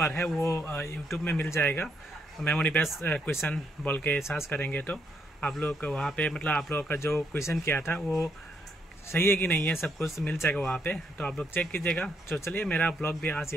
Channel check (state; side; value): normal; both; correlation 0.75